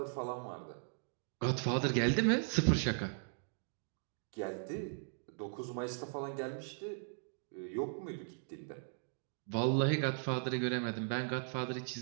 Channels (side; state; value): left; silent; digital silence